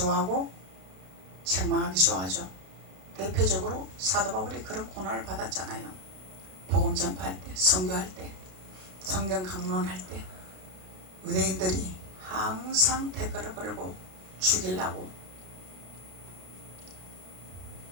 책망하기 좋아하죠. 대표적으로 사도 바울이 그런 고난을 받았잖아요. 복음 전파할 때, 선교할 때, 성경 강론할 때 유대인들이 항상 댓글을 걸고 죽이려고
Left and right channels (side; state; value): left; late; 32 ms